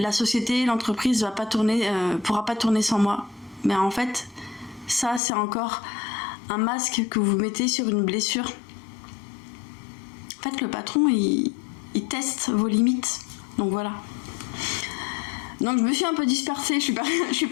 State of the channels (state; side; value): drops out; right; at 5.2 s